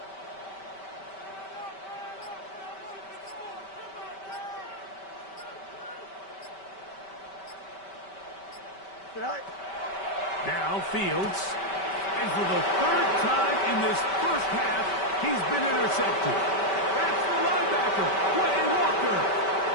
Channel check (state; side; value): late; right; 5.2 ms